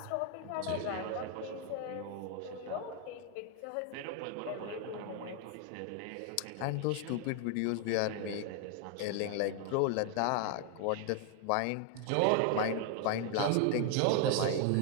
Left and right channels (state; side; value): different; both; correlation 0.00